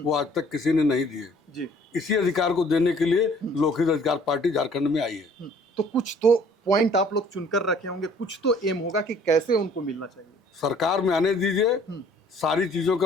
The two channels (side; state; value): both; normal; correlation 0.56